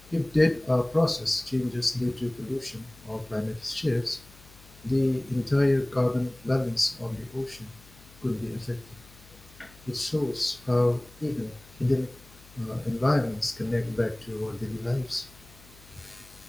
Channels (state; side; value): noise; left; hum, 23 dB below the sound